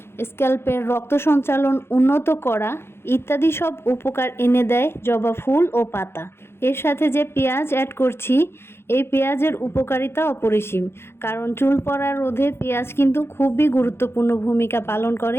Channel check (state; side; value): late; right; 0.12 ms